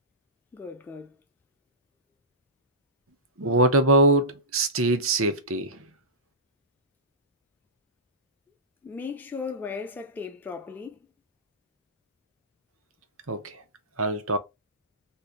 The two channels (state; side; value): normal; both; correlation -0.18